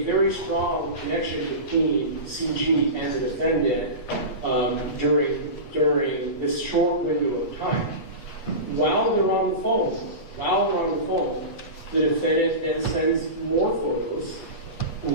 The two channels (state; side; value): late; right; 8.3 ms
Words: very strong connection between CG and the defendant during this short window of time. While they're on the phone, the defendant then sends more photos.